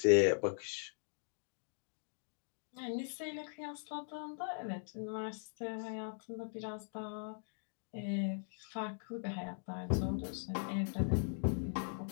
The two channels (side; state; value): right; silent; digital silence